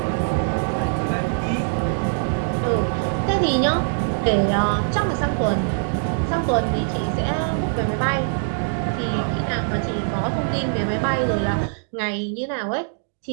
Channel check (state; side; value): silent; left; digital silence